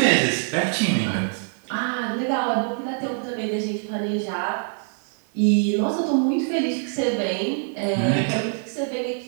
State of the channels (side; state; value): left; silent; 62 dB below the other